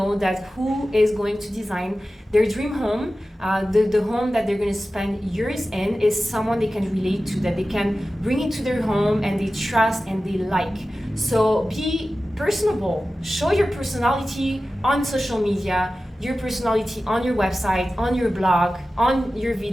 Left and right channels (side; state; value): both; normal; correlation 0.95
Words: that who is going to design their dream home, the home that they're going to spend years in is someone they can relate to, that they can bring into their home and they trust and they like. So be personable, show your personality on social media, your personality on your website, on your blog, on your